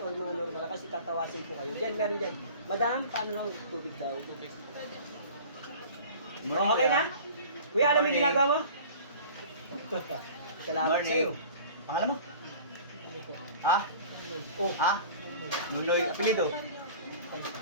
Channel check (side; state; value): both; inverted; correlation -0.43